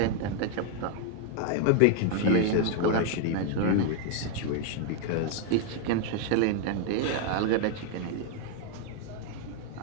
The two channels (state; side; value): different; both; correlation 0.00